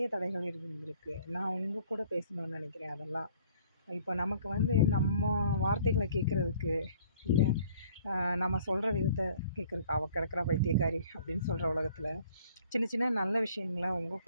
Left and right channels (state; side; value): inverted; both; correlation -0.55